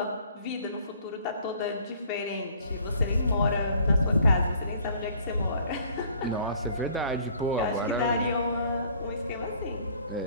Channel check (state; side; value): inverted; both; correlation -0.56